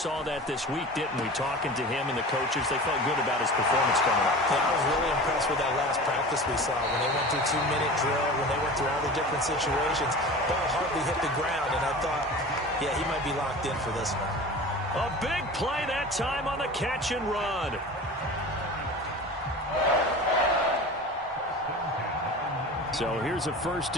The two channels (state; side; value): normal; both; correlation 0.35